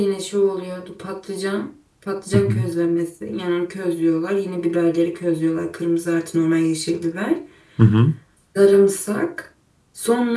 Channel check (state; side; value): identical; both; correlation 1.00